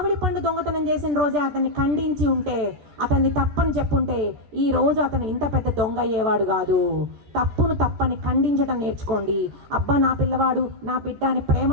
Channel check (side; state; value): left; late; 14 ms